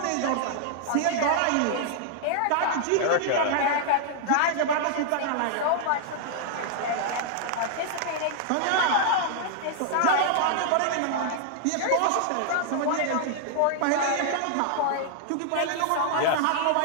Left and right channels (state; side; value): different; both; correlation -0.01